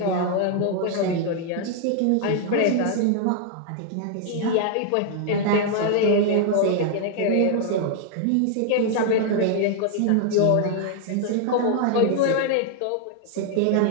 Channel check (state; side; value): different; both; correlation 0.00